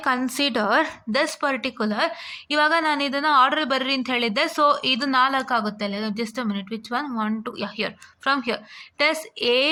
consider this particular, ಇವಾಗ ನಾನು ಇದನ್ನು ಆರ್ಡರ್ ಬರ್ರಿ ಅಂತ ಹೇಳಿದ್ದೆ. ಸೊ ಇದು 4 ಆಗುತ್ತೆ ಅಲ್ಲ. Just a minute, which one 1 2 here, from here this A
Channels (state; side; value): identical; both; correlation 1.00